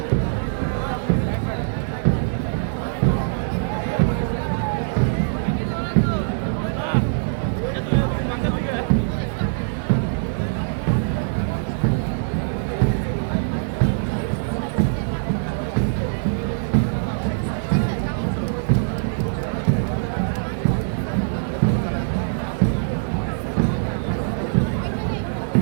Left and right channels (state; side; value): silent; left; digital silence